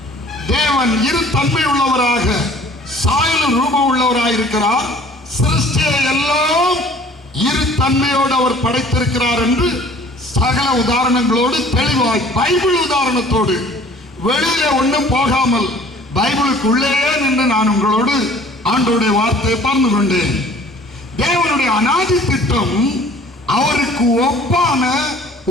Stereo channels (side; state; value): both; normal; correlation 0.51